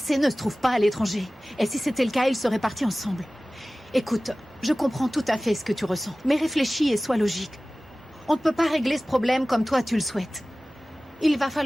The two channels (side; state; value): both; normal; correlation 0.97